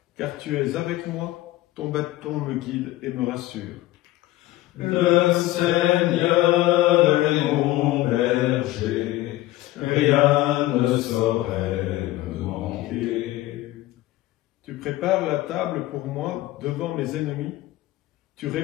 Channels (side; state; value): right; quieter; 16.7 dB